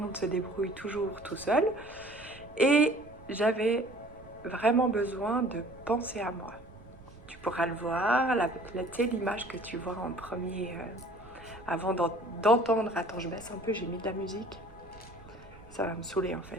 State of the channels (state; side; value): noise; right; rumble, 21 dB below the sound